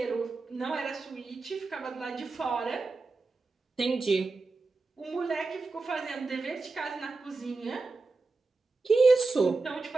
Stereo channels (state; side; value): quieter; left; 3.7 dB